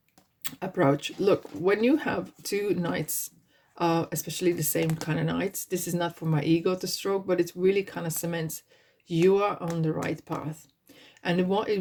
approach. Look, when you have two knights, especially the same kind of knights, this is not for my ego to stroke, but it really kind of cements you are on the right path. And what it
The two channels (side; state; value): both; identical; correlation 1.00